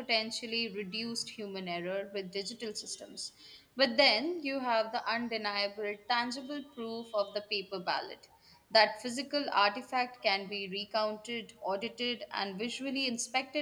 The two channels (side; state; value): both; identical; correlation 1.00